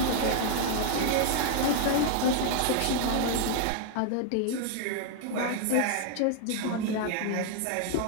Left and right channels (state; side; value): different; both; correlation 0.00